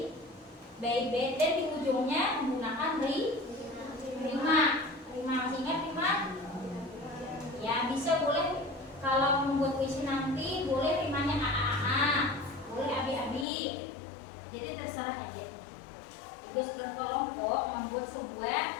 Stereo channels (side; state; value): right; drops out; at 13.5 s